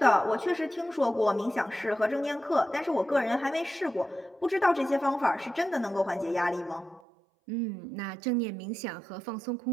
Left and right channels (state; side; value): drops out; left; at 7.0 s